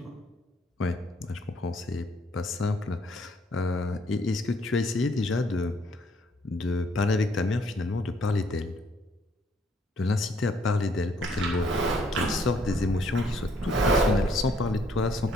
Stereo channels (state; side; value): normal; both; correlation 0.66